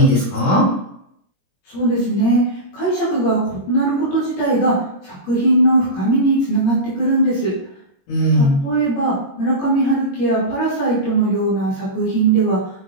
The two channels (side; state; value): right; late; 21 ms